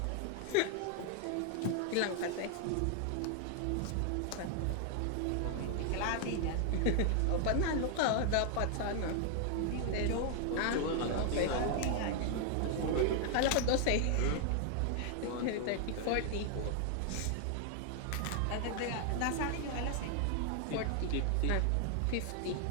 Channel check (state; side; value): different; both; correlation 0.00